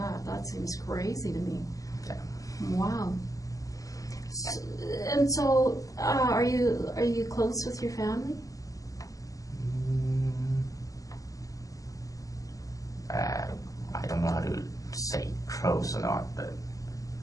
That seems crazy to me. Yeah. Wow. And so, are you close with your family? I don't know how to say close or not, but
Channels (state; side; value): late; right; 0.17 ms